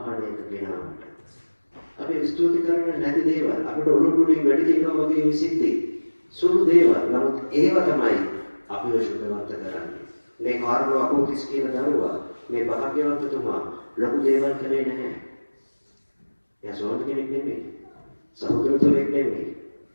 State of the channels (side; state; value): both; inverted; correlation -1.00